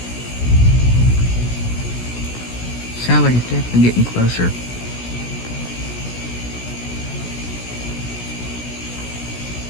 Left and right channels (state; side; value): late; right; 16 ms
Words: Sounds like it's definitely getting closer.